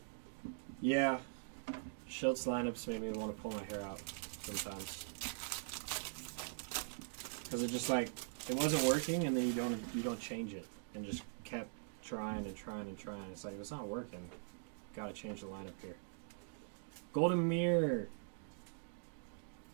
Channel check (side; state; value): left; silent; digital silence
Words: Yeah. Schultz lineups made me want to pull my hair out sometimes. Because it just like, it wasn't working and then you don't change it. And just kept trying and trying and trying. It's like, if it's not working, gotta change the lineup here. Golden Mirror